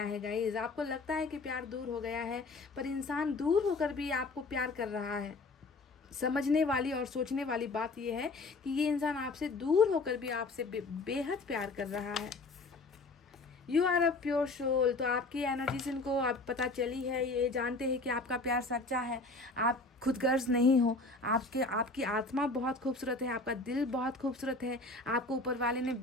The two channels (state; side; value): quieter; right; 3.4 dB